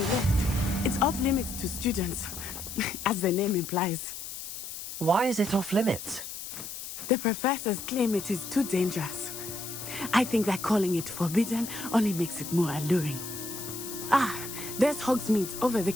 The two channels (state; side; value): noise; left; hiss, 9 dB below the sound